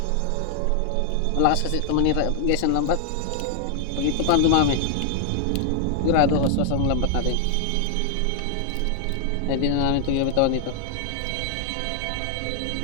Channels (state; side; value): different; both; correlation 0.00